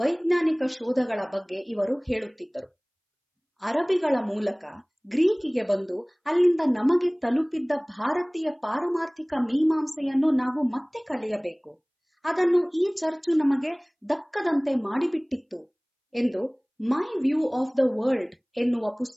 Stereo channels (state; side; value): identical; both; correlation 1.00